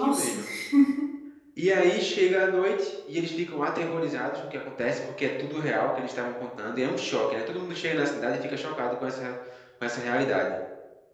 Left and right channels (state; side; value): identical; both; correlation 1.00